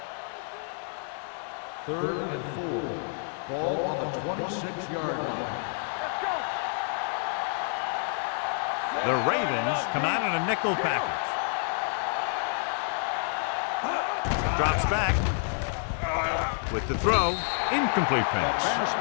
Third and 4. Ball on the 26-yard line. Let's go. The Ravens come out in a nickel package. Drops back. With the throw, incomplete pass.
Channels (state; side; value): silent; right; 56 dB below the other